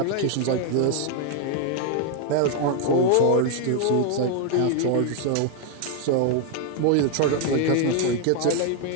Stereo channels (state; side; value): different; both; correlation 0.00